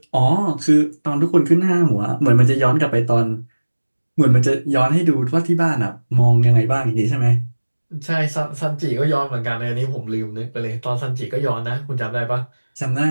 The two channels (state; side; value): inverted; both; correlation -1.00